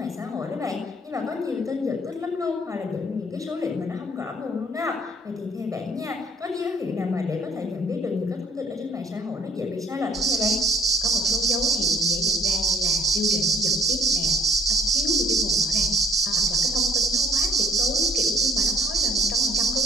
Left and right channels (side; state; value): both; normal; correlation 0.57